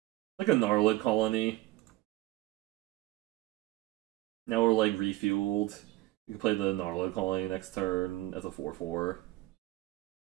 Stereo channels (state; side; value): quieter; left; 17.7 dB